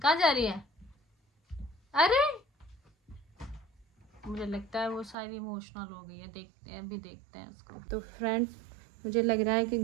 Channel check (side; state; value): left; drops out; at 5.2 s